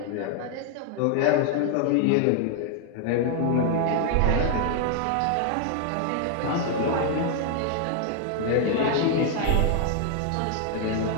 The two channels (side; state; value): both; different; correlation 0.00